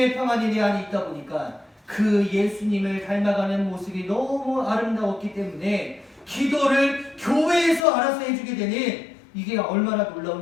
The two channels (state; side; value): drops out; right; at 7.9 s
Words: 평안이 내 안에 있다 보니까 그 예수님을 닮아가는 모습이 너무 아름다웠기 때문에 기도를 교회에서 알아서 해주게 되는 이게 얼마나